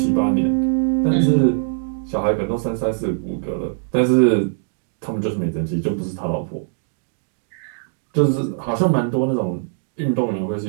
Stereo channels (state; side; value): silent; left; digital silence